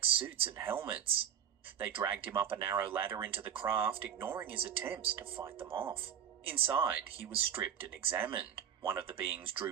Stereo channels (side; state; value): left; quieter; 9.0 dB